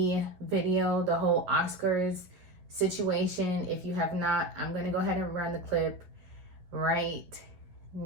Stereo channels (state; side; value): late; left; 11 ms